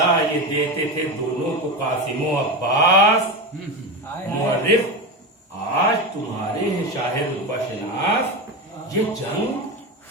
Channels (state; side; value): normal; both; correlation 0.19